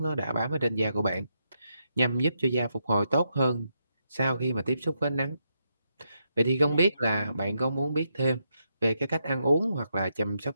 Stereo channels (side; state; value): both; inverted; correlation -0.82